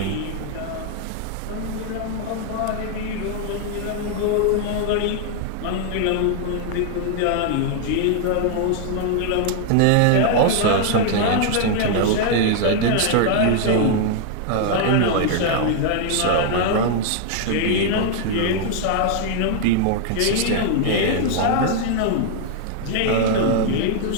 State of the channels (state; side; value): different; both; correlation 0.00